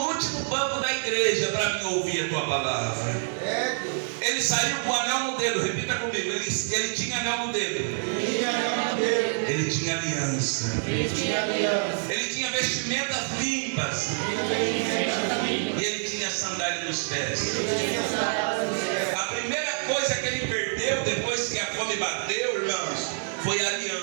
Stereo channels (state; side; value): silent; left; digital silence